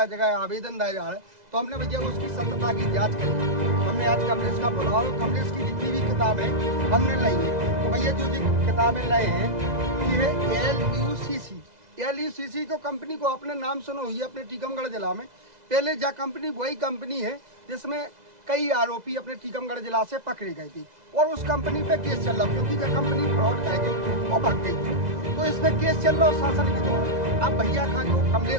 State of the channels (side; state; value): left; late; 2.0 ms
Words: जगह आवेदन दिया जा रहा है, तो हमने भैया उसकी सत्यता की जाँच करी। हमने आज कमलेश का बुलाओ, कमलेश की जितनी भी किताबें हमने लाई है, तो भैया जो किताबें लाए हैं ये है LUCC को कंपनी को अपने नाम सुनो हुई है अपने टीकमगढ़ जिला में। पहले जा कंपनी वही कंपनी है जिसमें कई आरोपी अपने टीकमगढ़ जिला से पकड़े गए थे और उस कंपनी पे केस चल रहा, क्योंकि जब कंपनी फ्रॉड कर गई वो भाग गई, तो इस पे केस चल रहा शासन के दौरान। अब भैया का जो